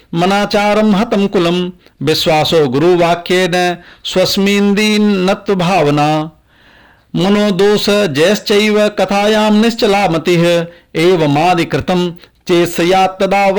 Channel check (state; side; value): identical; both; correlation 1.00